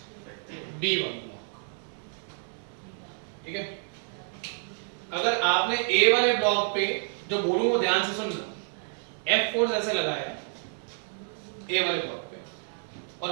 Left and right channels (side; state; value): left; silent; 57 dB below the other